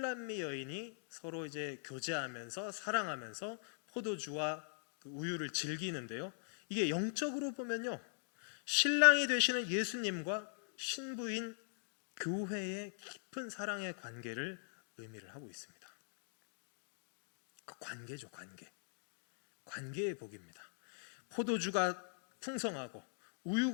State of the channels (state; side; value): silent; right; digital silence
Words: 여인이 서로 이제 교제하면서 사랑하면서 포도주와 그 우유를 즐기는데요. 이게 영적으로 보면요, 신랑이 되시는 예수님과 신부인 교회의 깊은 사랑의 관계를 의미를 하고 있습니다. 그 관계죠, 관계의 복입니다. 포도주가 풍성하고